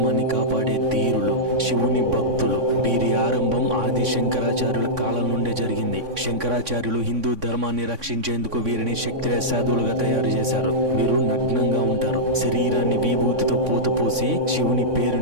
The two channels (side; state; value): left; late; 3.6 ms